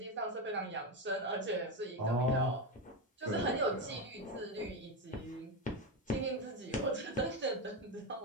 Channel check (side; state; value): both; normal; correlation 0.12